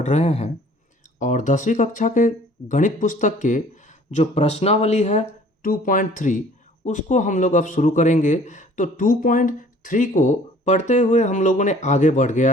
रहे हैं और 10वीं कक्षा के गणित पुस्तक के जो प्रश्नावली है 2.3 उसको हम लोग अब शुरू करेंगे। तो 2.3 को पढ़ते हुए हम लोगों ने आगे बढ़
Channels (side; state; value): both; normal; correlation 0.53